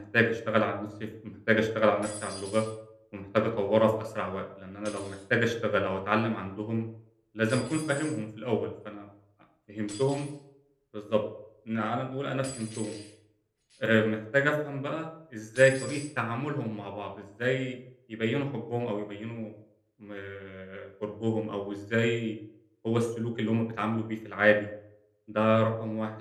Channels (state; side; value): identical; both; correlation 1.00